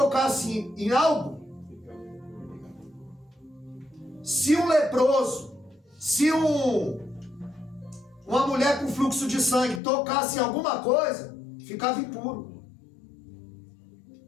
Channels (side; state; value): right; drops out; at 9.8 s